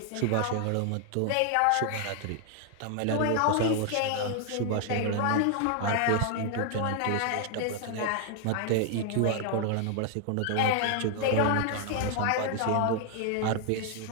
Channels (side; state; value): both; different; correlation 0.00